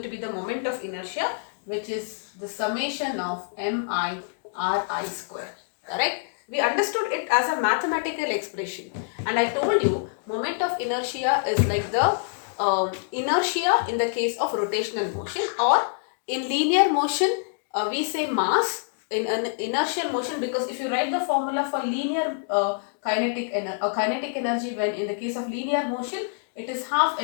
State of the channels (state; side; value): silent; right; digital silence